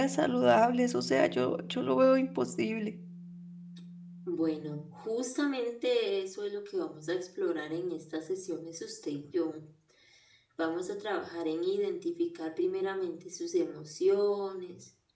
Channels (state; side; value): identical; both; correlation 1.00